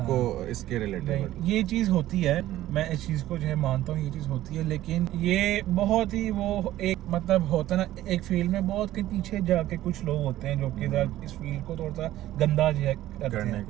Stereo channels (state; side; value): quieter; left; 14.3 dB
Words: इसके रिलेटेड। ये चीज होती है, मैं इस चीज को जो है मानता हूँ, ये चीज होती है, लेकिन ये बहुत ही वो एक मतलब होता है ना, एक फील्ड में बहुत के पीछे जाके कुछ लोग होते हैं जो कि इस फील्ड को थोड़ा सा गंदा जो है करने की